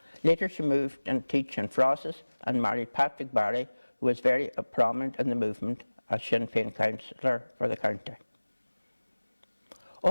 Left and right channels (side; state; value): both; inverted; correlation -1.00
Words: Later she moved and teach in Frosses and married Patrick Barry, who was very prominent in the movement as Sinn Féin councillor for the county.